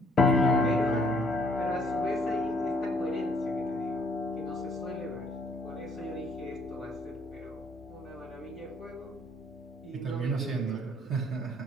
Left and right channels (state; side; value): normal; both; correlation 0.64